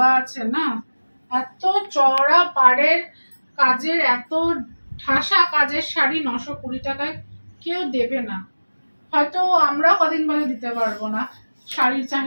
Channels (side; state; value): both; inverted; correlation -1.00